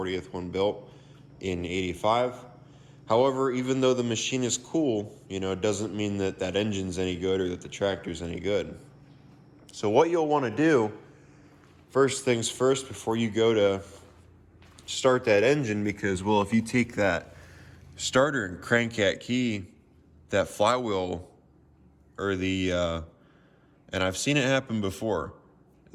one built in 85. However, even though the machine is cool, it doesn't mean that that engine's any good or that the tractor's any good. So what you'll want to do, first things first, before you go to start that engine, because, well, if you take that starter and crank that key, that flywheel, or and I've seen it happen before,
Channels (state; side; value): identical; both; correlation 1.00